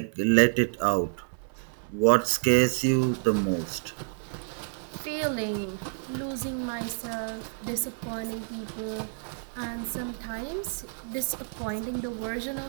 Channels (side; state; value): left; silent; 59 dB below the other